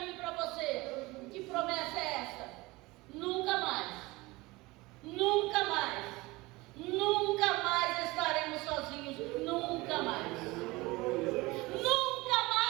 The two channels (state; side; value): quieter; left; 21.9 dB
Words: e para você. Que promessa é essa? Nunca mais, nunca mais, nunca mais estaremos sozinhos, nunca mais. Nunca